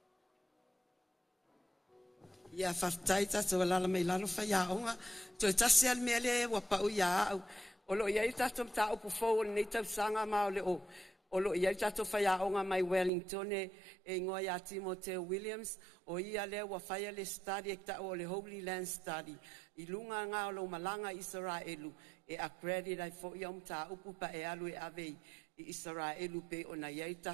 Ia whaftai tātou alala mei lalo whaiaonga. Toi tasi al mea le wapa o ia au. O lo iai tātou mta upu fau nei tau sanga mao le o. O lo iai tātou whaiaonga mai Wellington e ingoa ia Timoteo Williams. O ia le wa whaia le study e ta o le Holy Land Study. I lunga ngā o lo malanga Israelu. E accredit ai fo ia mta upu pa e alu e avei. I Israelu pe o na iai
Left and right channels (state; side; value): drops out; left; at 13.1 s